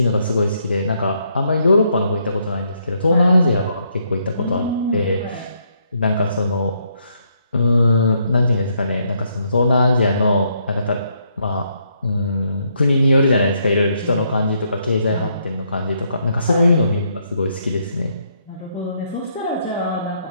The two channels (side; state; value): both; inverted; correlation -0.74